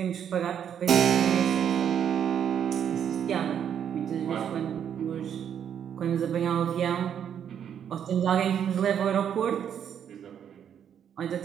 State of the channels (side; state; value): left; quieter; 8.8 dB